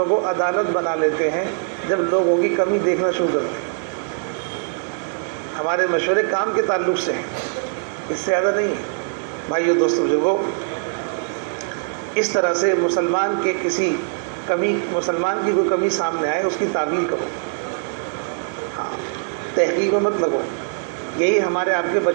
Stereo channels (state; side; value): silent; left; 64 dB below the other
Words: کو عدالت بنا لیتے ہیں جب لوگوں کی کمی دیکھنا شروع کرتے ہیں۔ ہمارے مشورے کام کے تعلق سے ہیں، اس سے زیادہ نہیں ہے۔ بھائیو دوستو بزرگوں، اس طرح سے مسلمان کی کوئی کمی سامنے آئے اس کی تعویل کرو، ہاں، تحقیق میں مت لگو۔ یہی ہمارے آپ کے